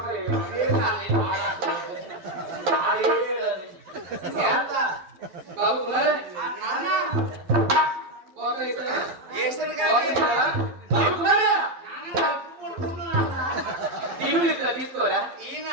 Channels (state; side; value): late; left; 11 ms